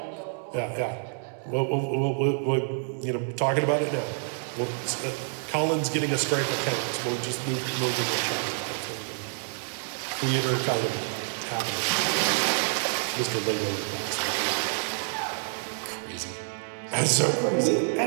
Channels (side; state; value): left; silent; 60 dB below the other